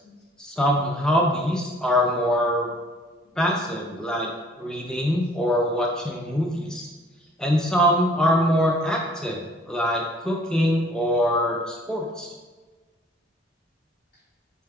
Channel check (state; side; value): normal; both; correlation 0.55